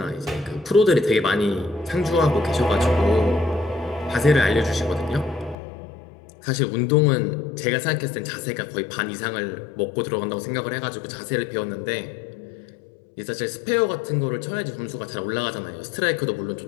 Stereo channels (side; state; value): right; drops out; at 5.6 s